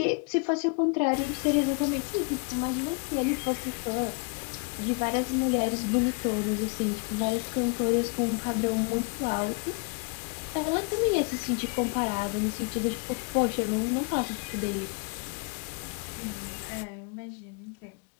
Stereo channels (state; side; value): quieter; right; 35.4 dB